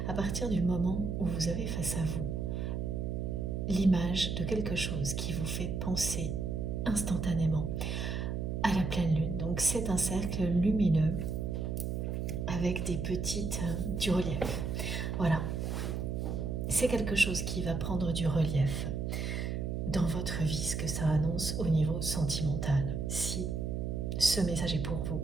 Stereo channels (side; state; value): right; noise; hum, 1 dB below the sound